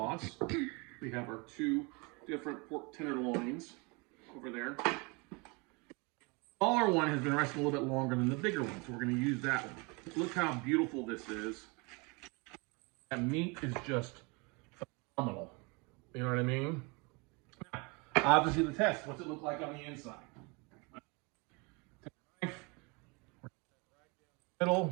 We have our 2 different pork tenderloins over there. The smaller one has been resting a little bit longer than the bigger one, so we're going to use that one. Look how beautiful this is. That meat is just phenomenal. You know what I mean? Now, obviously the test. What's it look like on the inside? Take a knife. Middle.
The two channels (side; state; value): left; quieter; 29.3 dB